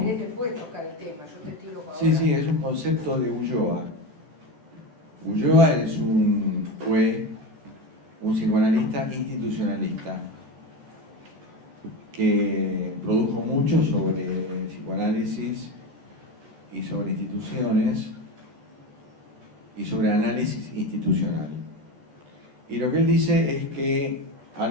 después tocar el tema, yo te tiro ahora. Sí, sí, es un concepto de Ulloa. Ulloa fue un psicoanalista institucionalista que produjo mucho sobre psicoanálisis y sobre instituciones y sobre análisis institucional. Y lo que él dice es que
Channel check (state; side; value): late; left; 14 ms